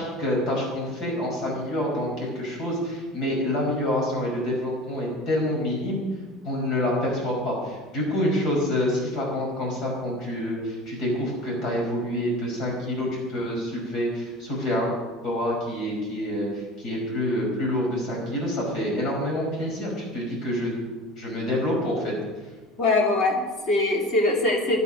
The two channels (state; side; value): normal; both; correlation 0.37